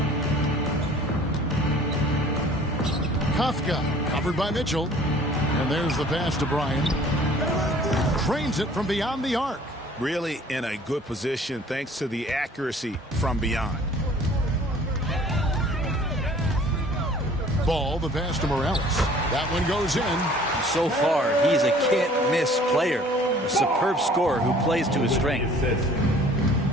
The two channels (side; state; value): both; normal; correlation 0.52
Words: Kafka covered by Mitchell. And there's the pass to Bryant. Cranes it from beyond the arc. Really in a good position thanks to the accuracy from beyond. Ball, the pass to Morales. That one goes in. So far, he's a can't-miss player. A superb scorer who plays to his strength.